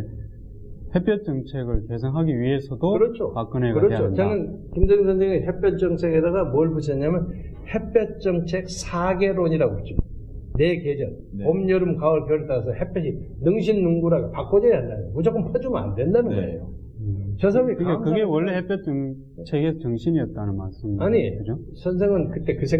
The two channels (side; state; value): both; identical; correlation 1.00